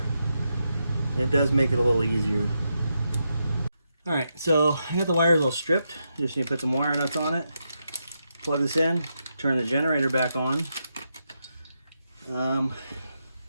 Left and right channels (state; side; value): inverted; both; correlation -0.84